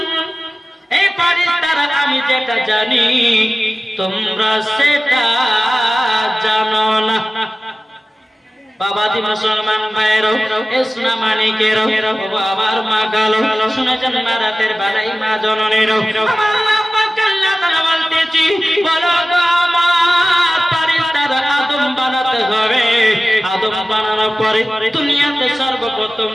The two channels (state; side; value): normal; both; correlation 0.96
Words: এই ফারিস্তারা আমি যেটা জানি তোমরা সেটা জানো না। বাবাজি মুসলমান ভাইয়েরও এসনা মানিকেরও আমার মা গালো শুনেছেন মা রাতের বেলায় মা জননীরও আমার মা পাক আল্লাহ তাআলা বলতেছি বলো গো আমার ফারিস্তারা আদম বানাতে হবে। আদম বানানোর পরে দুনিয়াতে সর্বপ্রথম